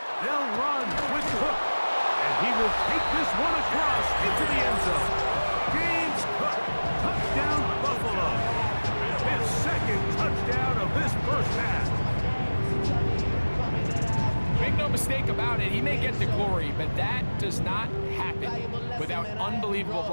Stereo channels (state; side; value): inverted; both; correlation -1.00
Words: They'll run with the hook, and he will take this one across into the end zone. James Cook, touchdown Buffalo. His second touchdown of this first half. Make no mistake about it, he may get the glory, but that does not happen without unbelievable